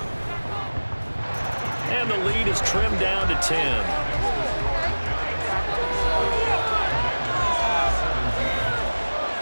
And the lead is trimmed down to 10.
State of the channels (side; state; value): both; inverted; correlation -1.00